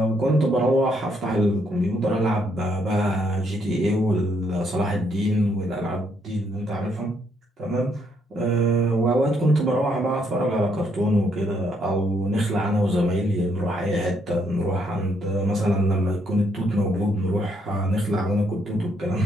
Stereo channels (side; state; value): both; normal; correlation 0.72